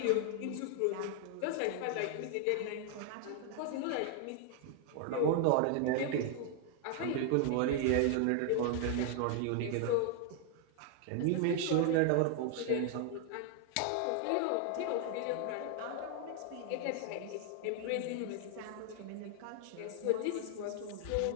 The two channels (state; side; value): different; both; correlation 0.00